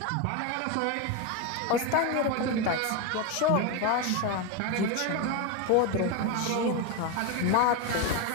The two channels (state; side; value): different; both; correlation 0.03